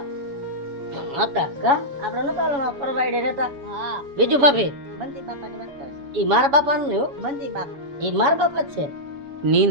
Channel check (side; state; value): left; late; 7.1 ms